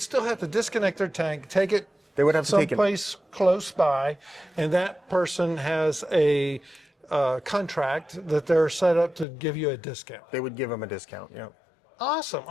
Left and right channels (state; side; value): drops out; right; at 9.2 s